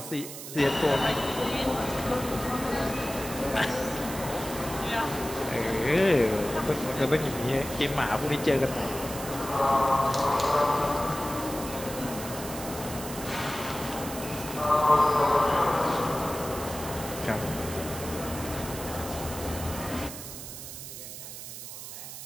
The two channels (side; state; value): right; noise; hiss, 10 dB below the sound